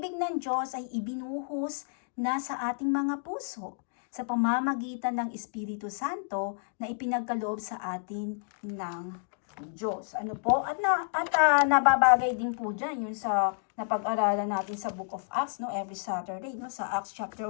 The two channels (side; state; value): right; silent; digital silence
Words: ng Diyos ay ibinuhos na sa ating mga puso sa pamamagitan ng Espiritu Santo na ipinagkaloob sa atin ng Diyos. Ano po? At nababagay din po dyan yung sa napag-aralan natin sa Book of Acts, every Saturday, sa Acts chapter